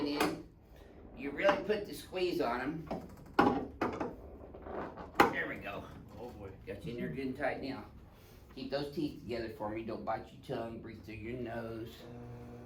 in, you really put the squeeze on them. There we go. Oh boy. Got you in there good and tight now. Keep those teeth together for me, don't bite your tongue, breathe through your nose.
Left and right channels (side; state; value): both; identical; correlation 1.00